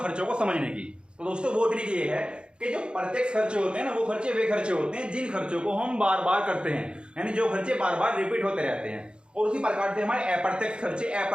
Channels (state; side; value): late; left; 0.054 ms